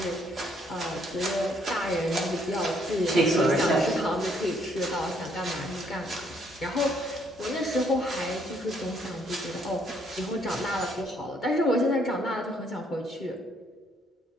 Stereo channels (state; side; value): normal; both; correlation 0.68